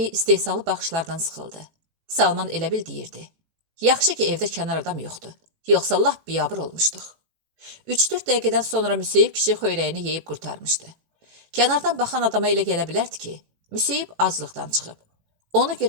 istehsalı baxışlardan sıxıldı. Salman elə bil deyirdi. Yaxşı ki evdə kənar adam yoxdur, yoxsa lap biyabır olmuşduq. 3-4 dəqiqədən sonra Müseyib kişi xöyrəyini yeyib qurtarmışdı. Kənardan baxan adama elə gələ bilərdi ki, Müseyib aclıqdan çıxıb. Ona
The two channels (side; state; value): left; late; 18 ms